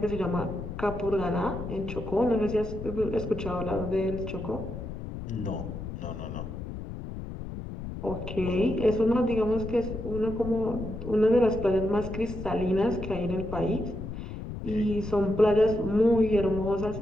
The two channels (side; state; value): left; noise; rumble, 8 dB below the sound